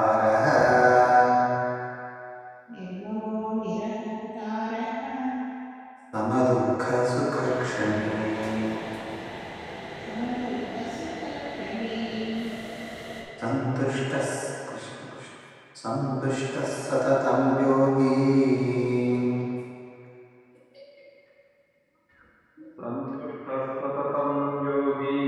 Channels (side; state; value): both; identical; correlation 1.00